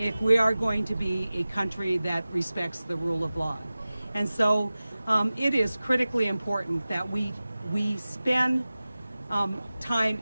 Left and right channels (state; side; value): inverted; both; correlation -0.97